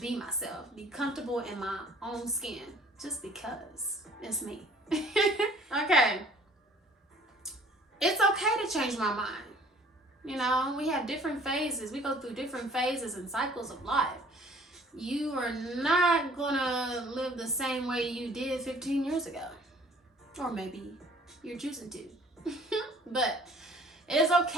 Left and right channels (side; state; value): both; normal; correlation 0.54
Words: myself. Be comfortable in my own skin. Just because it's me. Okay. It's okay to change my mind. You know, we have different phases. We go through different phases and cycles of life. You are not gonna live the same way you did 15 years ago. Or maybe you're choosing to. But it's